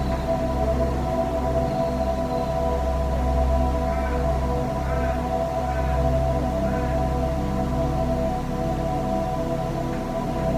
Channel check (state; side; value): identical; both; correlation 1.00